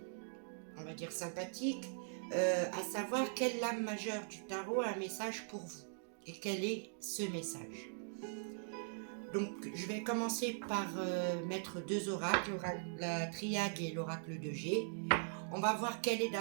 on va dire sympathique, à savoir quelle lame majeure du tarot a un message pour vous et quel est ce message. Donc je vais commencer par mettre deux oracles, la triade et l'oracle de G. On va voir quel est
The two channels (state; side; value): silent; left; digital silence